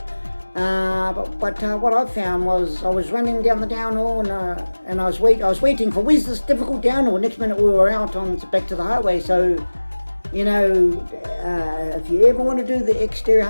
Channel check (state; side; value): inverted; both; correlation -1.00